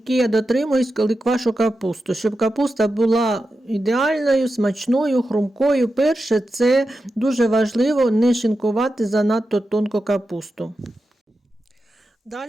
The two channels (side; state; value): both; normal; correlation 0.90